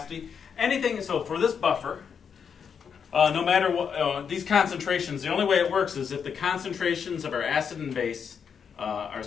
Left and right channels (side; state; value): right; quieter; 6.9 dB